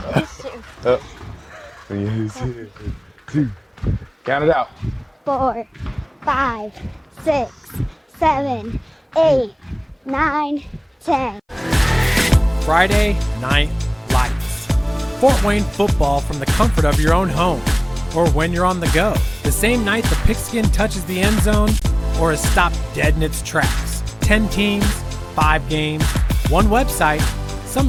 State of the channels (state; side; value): identical; both; correlation 1.00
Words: Two. Count it out. 4, 5, 6, 7, 8, 9, 10. Friday Night Lights. Fort Wayne football from the comfort of your own home, or when you're on the go. The same night the pigskin touches the end zone, or is stopped dead in its tracks. 10 teams, 5 games, one website,